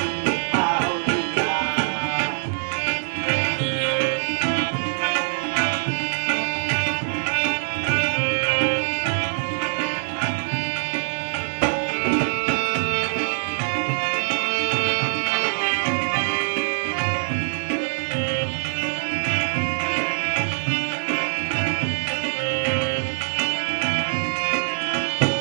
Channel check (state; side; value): silent; left; digital silence